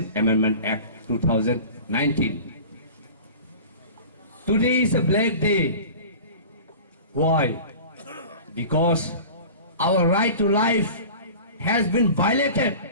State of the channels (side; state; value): both; inverted; correlation -0.38